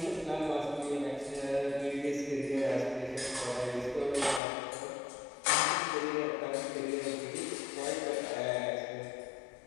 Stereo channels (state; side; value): drops out; right; at 4.4 s